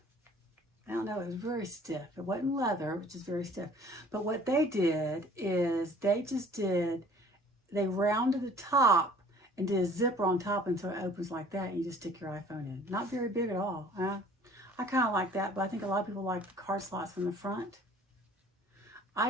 I don't know. It was very stiff. It wasn't leather, which is very stiff. But what they did is they rounded the top and did a zipper on top, and so it opens like that, and you just stick your iPhone in. Not very big at all. I kind of like that, but I think a lot of people like the card slots in the front.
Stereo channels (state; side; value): normal; both; correlation 0.52